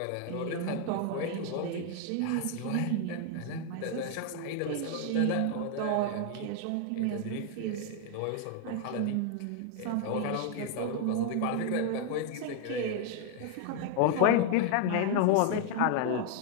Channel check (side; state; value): both; different; correlation 0.01